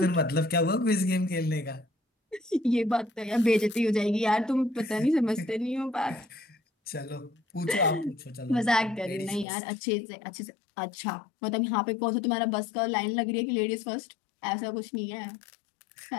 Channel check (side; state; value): right; drops out; at 9.5 s